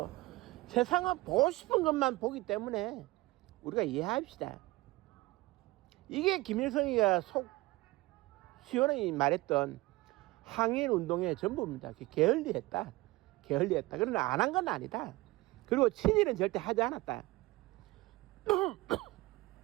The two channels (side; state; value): left; quieter; 20.7 dB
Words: 세상은 보고 싶은 것만 보기 때문에 우리가 이해합시다. 이게 김일성이가 속 시원하게 말했던 항일 운동의 전부입니다. 게을리했다. 게을리했다. 그러나 안 한 건 아니다. 그리고 친일은 절대 하지 않았다.